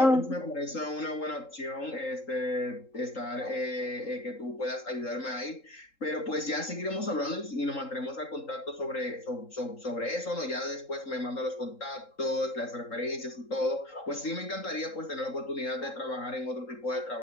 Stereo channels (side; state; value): right; late; 3.8 ms